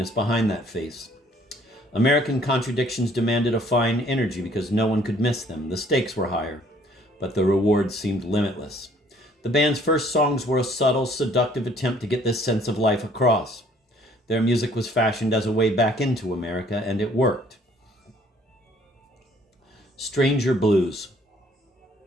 behind that face. American contradictions demanded a fine energy because no one could miss them. The stakes were higher, but the rewards seemed limitless. The band's first songs were a subtle, seductive attempt to get this sense of life across. Their music was fashioned as a way back into America, and it worked. Stranger Blues.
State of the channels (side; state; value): both; normal; correlation 0.60